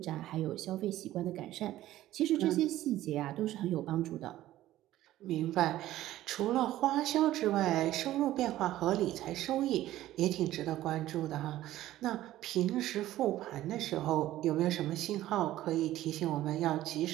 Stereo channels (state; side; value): quieter; left; 14.5 dB